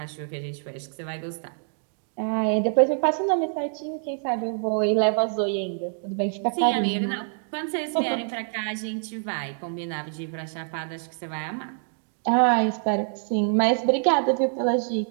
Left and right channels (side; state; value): left; silent; 61 dB below the other